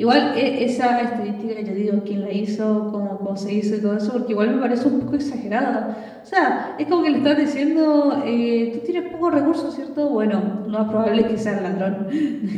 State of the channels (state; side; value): identical; both; correlation 1.00